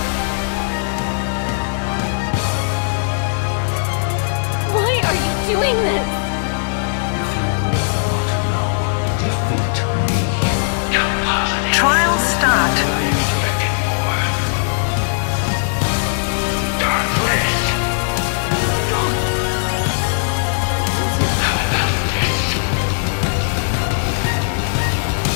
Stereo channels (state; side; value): silent; right; 56 dB below the other